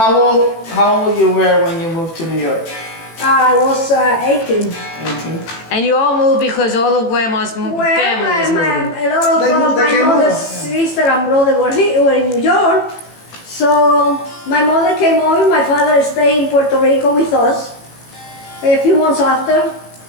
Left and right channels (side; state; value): right; late; 18 ms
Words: old you were when you moved to New York? I was 18. 18. And you all moved because all of grandma's family was moving. A lot They of they my came mother's over. sister and brother were in New York. So my mother came over, my father stayed in Puerto Rico with us a few months after.